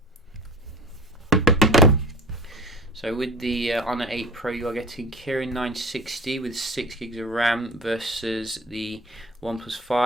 So with the Honor 8 Pro, you are getting Kirin 960 with 6 gigs of RAM versus the OnePlus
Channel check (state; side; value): normal; both; correlation 0.38